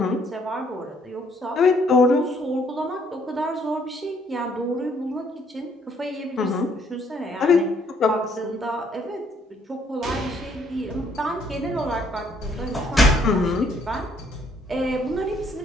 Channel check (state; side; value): normal; both; correlation 0.66